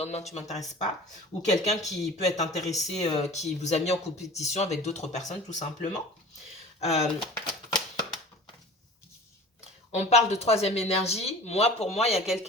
tu m'intéresses pas. Ou quelqu'un qui peut être intéressé, qui vous a mis en compétition avec d'autres personnes tout simplement. On parle de troisième énergie. Pour moi, il y a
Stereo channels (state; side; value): normal; both; correlation 0.41